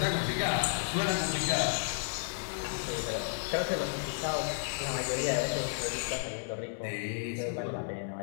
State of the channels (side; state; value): right; silent; 56 dB below the other